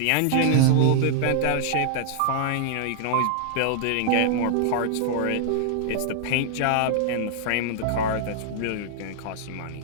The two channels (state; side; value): different; both; correlation -0.01